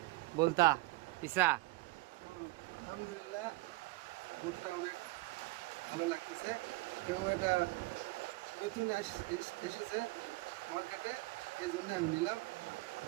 বলতা ইসা। আলহামদুলিল্লাহ, বুটটা অনেক ভালো লাগতেছে এবং এটা নতুন এসেছে মার্কেটে, এই জন্য আমি নিলাম।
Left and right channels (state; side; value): quieter; left; 22.6 dB